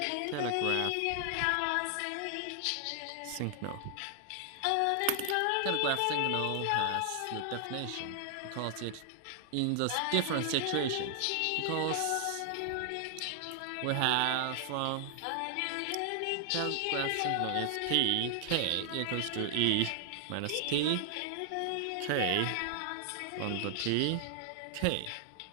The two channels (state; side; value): different; both; correlation 0.00